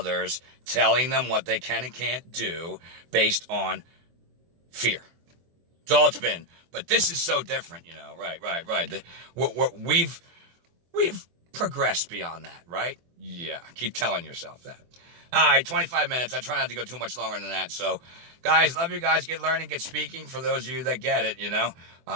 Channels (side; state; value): left; late; 24 ms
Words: telling them what they can and can't do based on fear. That's all it's been. But this is so different, right. We've progressed beyond that, right? Yeah, keep telling yourself that. All right, 25 minutes. I try not to go too much longer than that. So, guys, love you guys. Get learning, get speaking. For those of you that get it,